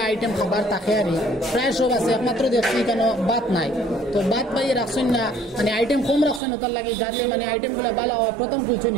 আইটেম খাবার থাকে আর প্রায় সব আছে, একমাত্র দেখছি কেন ভাত নাই। তো ভাত পাইয়ে রাখছেন না, মানে আইটেম কম রাখছেন ওটার লাগে যাতে মানে আইটেমগুলো ভালো হয় প্রথম কুলছেন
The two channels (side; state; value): left; drops out; at 6.4 s